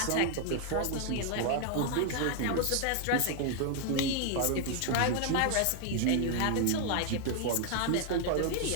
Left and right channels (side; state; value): both; different; correlation 0.00